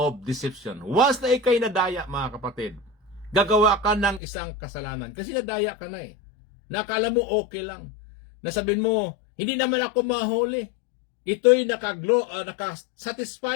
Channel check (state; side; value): drops out; right; at 4.2 s